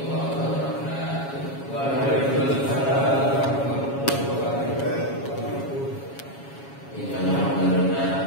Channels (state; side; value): late; right; 7.2 ms